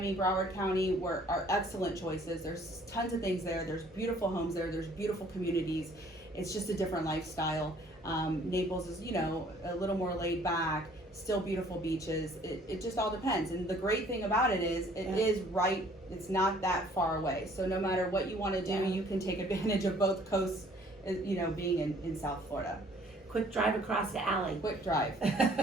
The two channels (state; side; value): normal; both; correlation 0.57